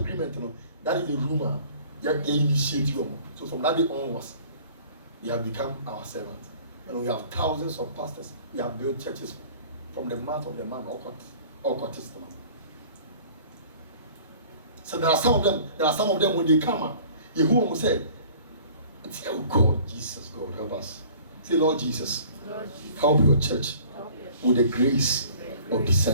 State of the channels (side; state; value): both; inverted; correlation -0.49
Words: That is the rumor. You initiate you. So from that day onwards, they have become our servants. And we have thousands of pastors. We have built churches from the mouth of the man, all Testament. So there are some of them when they come, Yehu will say, oh God, Jesus, God, help us. Say, Lord Jesus, help your church with the grace of